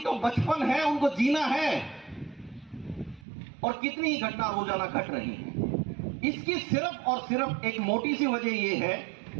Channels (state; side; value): drops out; left; at 3.2 s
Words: बचपन है, उनको जीना है, और कितनी ही घटना रोजाना घट रही है। इसकी सिर्फ और सिर्फ एक मोटी सी वजह यह है